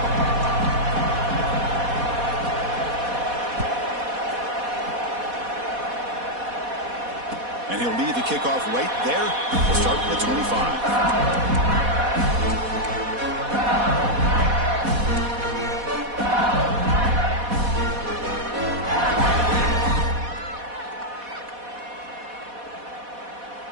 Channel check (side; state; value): left; late; 4.1 ms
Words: And he'll lead the kickoff right there. We'll start with the 25.